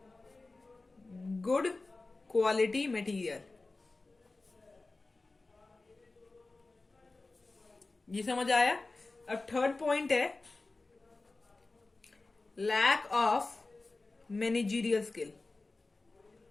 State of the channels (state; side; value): quieter; right; 3.4 dB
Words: good quality material. ये समझ आया? अब थर्ड पॉइंट है lack of managerial skill.